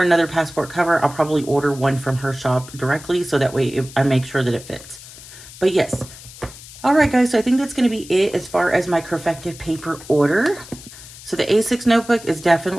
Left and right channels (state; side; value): noise; left; hiss, 17 dB below the sound